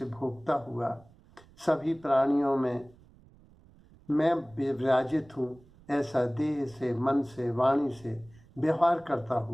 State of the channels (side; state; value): right; noise; rumble, 26 dB below the sound